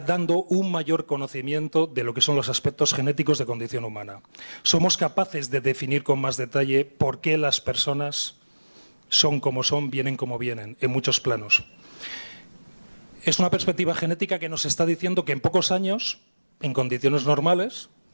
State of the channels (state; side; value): inverted; both; correlation -1.00